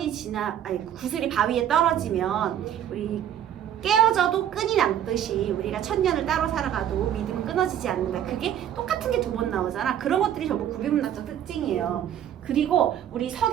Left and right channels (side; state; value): left; quieter; 10.3 dB